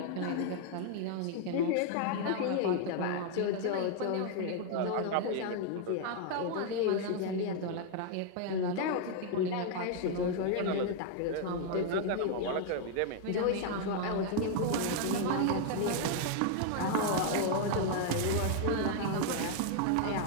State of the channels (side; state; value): both; different; correlation 0.00